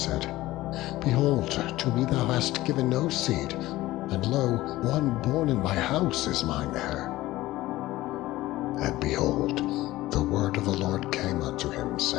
Behold, to me thou hast given no seed, and lo, one born in my house is mine heir. And behold, the word of the Lord came unto him,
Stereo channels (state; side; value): quieter; right; 17.2 dB